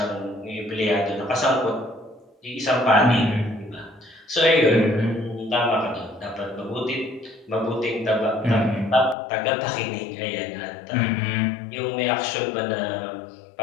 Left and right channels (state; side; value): drops out; right; at 9.2 s